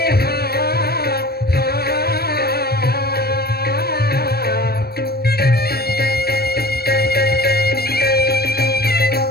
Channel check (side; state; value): right; late; 0.46 ms